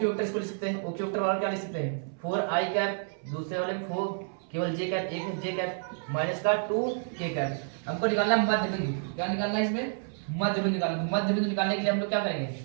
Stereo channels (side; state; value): left; silent; 58 dB below the other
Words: वेक्टर इसको लिख सकते हैं, ओक्यू वेक्टर वाला क्या लिख सकते हैं 4 आई कैप, दूसरे वाले में 4 केवल जे कैप, एक है जे कैप माइनस का 2 के कैप। हमको निकालना मध्य बिंदु, क्या निकालना है इसमें मध्य बिंदु निकालना। मध्य बिंदु निकालने के लिए हम लोग क्या करेंगे